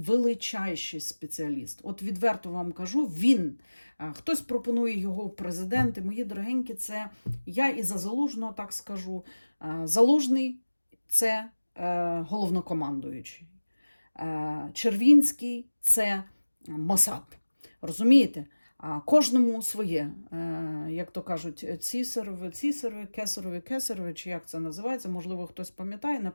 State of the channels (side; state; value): both; inverted; correlation -1.00